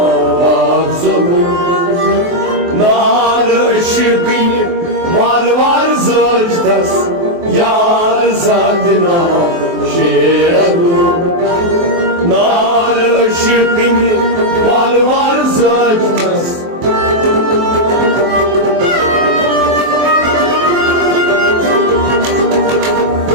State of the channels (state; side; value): late; left; 23 ms